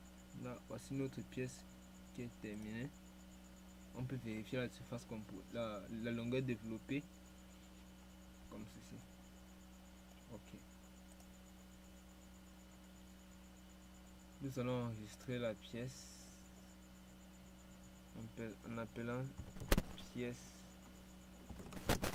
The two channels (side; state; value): both; identical; correlation 1.00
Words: Là, voici notre pièce qui est terminée. On peut vérifier la surface la longueur développée comme ceci. Ok. Nous allons enregistrer la pièce en appelant pièce